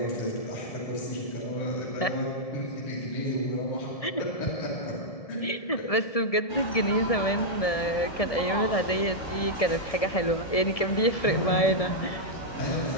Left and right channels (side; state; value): right; late; 1.7 ms